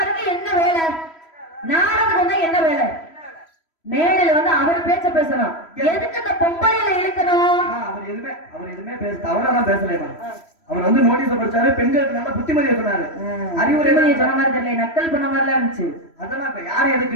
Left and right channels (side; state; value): right; late; 3.1 ms